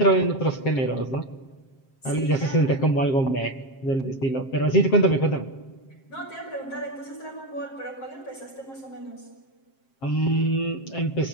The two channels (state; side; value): late; right; 7.5 ms